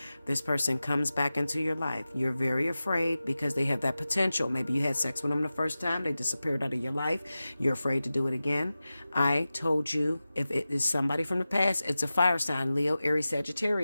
This person comes back into your life. You're very afraid because they have that potential. Maybe you had sex with them the first time. They disappeared out of your life. You're afraid to do it again. I told you if it is somebody from the past, it's a fire sign, Leo, Aries,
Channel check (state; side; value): inverted; both; correlation -0.95